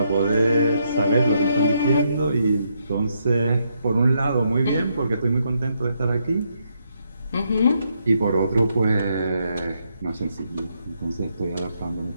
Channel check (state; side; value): inverted; both; correlation -0.78